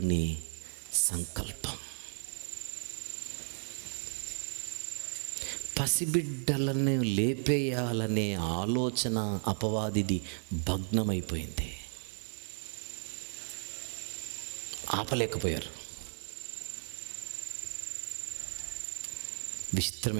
సంకల్పం. పసిబిడ్డలను లేపేయాలనే ఆలోచన అపవాదిది భగ్నమైపోయింది. ఆపలేకపోయారు. విచిత్రం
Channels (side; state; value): left; silent; 55 dB below the other